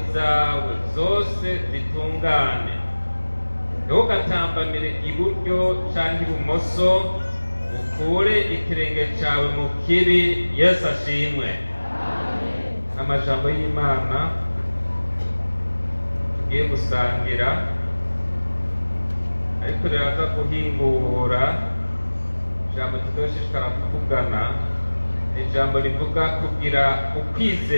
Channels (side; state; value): both; inverted; correlation -1.00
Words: zawe zose zitungane. Ntugatambamire iburyo cyangwa ibumoso, ukure ikirenge cyawe mu kibi. Yesu ashimwe. Amajambo y'Imana tugiye gusangira, ariko riraza guhingura ijambo tuzoshishikara kuvugana. Ijambo rivuga kugira